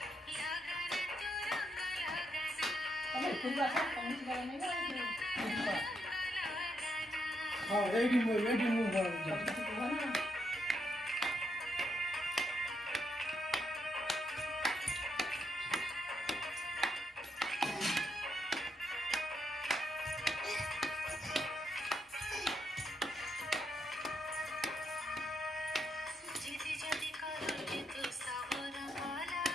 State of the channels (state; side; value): normal; both; correlation 0.78